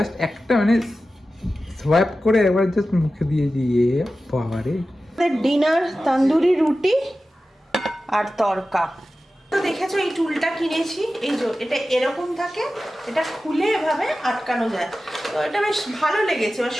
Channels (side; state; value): both; normal; correlation 0.94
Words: একটা মানে সোয়াইপ করে একবার জাস্ট মুখে দিয়ে দিয়ে বাবারে। ডিনার তন্দুরি রুটি আর তরকা। তো দেখেছো এই টুলটা কিনেছি, এই যে এটা এরকম থাকে, এটা খুলে এভাবে আটকানো যায়, তো এটা বেশ ভালো লেগেছে। এবার